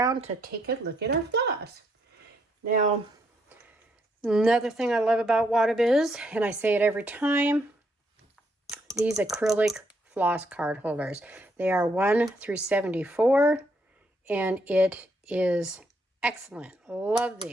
to take a look at our floss. Now, another thing I love about Wattobizz, and I say it every time, these acrylic floss card holders. They are 1 through 74, and it is excellent. Love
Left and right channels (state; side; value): normal; both; correlation 0.74